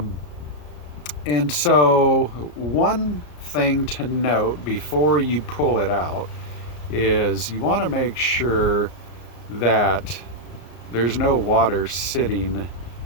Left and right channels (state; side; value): late; right; 34 ms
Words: And so one thing to note before you pull it out is you want to make sure that there's no water sitting